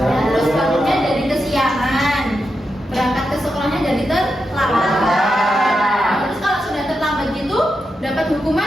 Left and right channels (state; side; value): normal; both; correlation 0.87